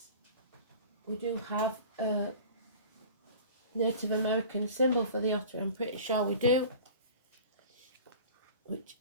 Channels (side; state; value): both; inverted; correlation -0.41